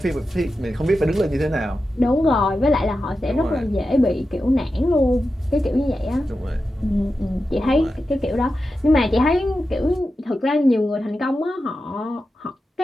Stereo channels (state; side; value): normal; both; correlation 0.91